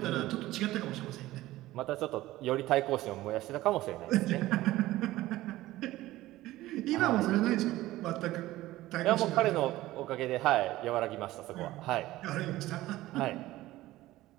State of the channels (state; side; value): quieter; left; 16.6 dB